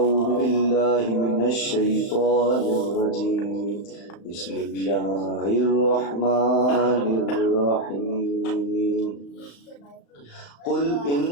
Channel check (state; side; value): late; right; 35 ms